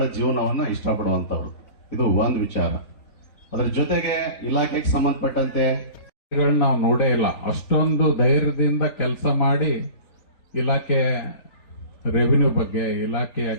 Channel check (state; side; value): late; right; 3.9 ms